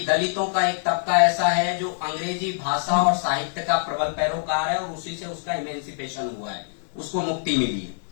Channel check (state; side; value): silent; right; digital silence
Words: दलितों का एक तबका ऐसा है जो अंग्रेजी भाषा और साहित्य का प्रबल पैरोकार है और उसी से उसका इमेंसिपेशन हुआ है, उसको मुक्ति मिली है।